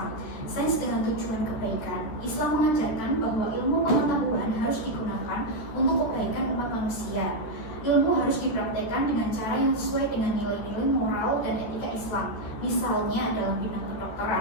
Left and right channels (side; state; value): right; late; 13 ms